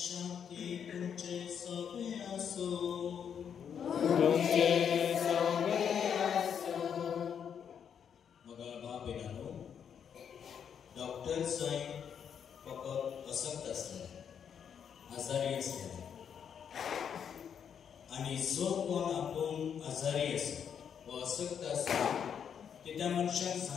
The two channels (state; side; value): quieter; right; 7.9 dB